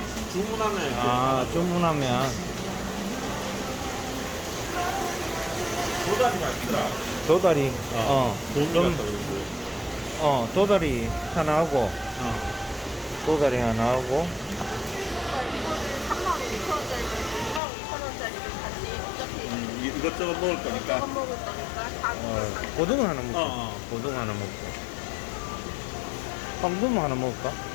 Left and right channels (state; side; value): drops out; right; at 17.6 s